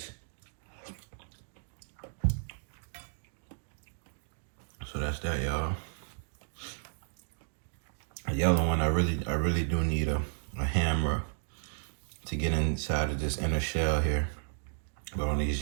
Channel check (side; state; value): left; silent; digital silence